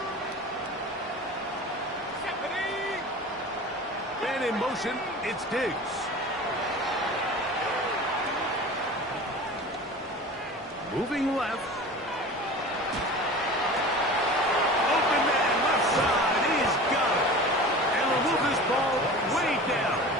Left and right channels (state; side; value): normal; both; correlation 0.37